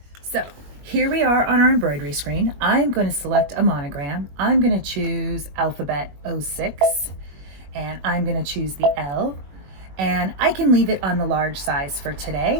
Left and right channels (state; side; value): late; left; 21 ms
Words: So here we are on our embroidery screen. I'm going to select a monogram. I'm going to choose alphabet 06 and I'm going to choose the L, and I can leave it on the large size for